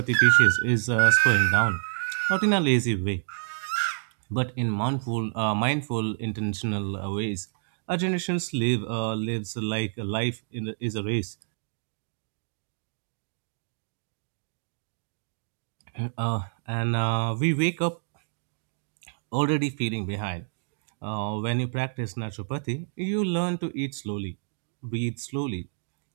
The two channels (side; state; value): left; silent; digital silence